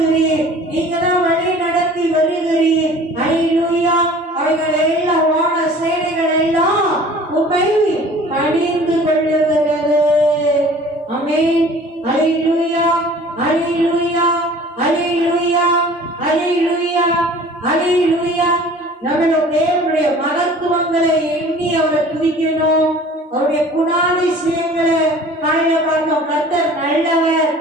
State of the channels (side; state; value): both; normal; correlation 0.47